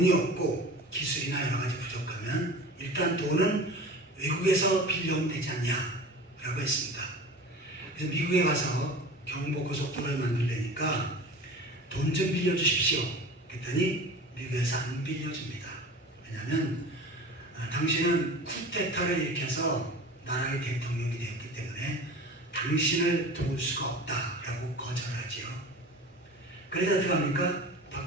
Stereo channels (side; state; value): both; normal; correlation 0.37